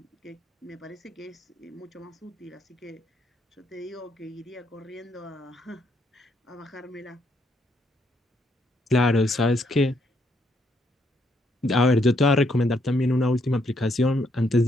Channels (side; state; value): both; normal; correlation 0.74